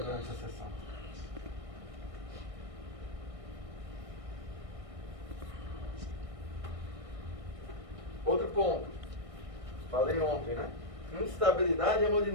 a sessão. ponto. Falei ontem, né? Instabilidade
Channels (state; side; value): late; left; 1.6 ms